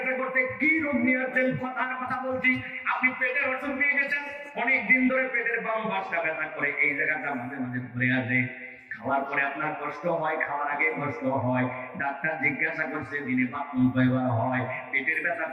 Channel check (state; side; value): identical; both; correlation 1.00